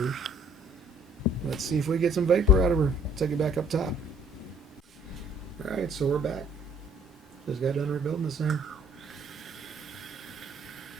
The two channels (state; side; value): normal; both; correlation 0.58